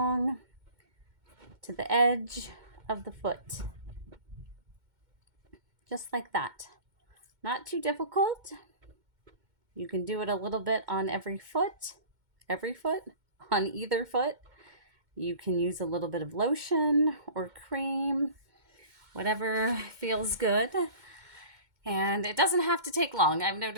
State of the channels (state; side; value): late; left; 2.1 ms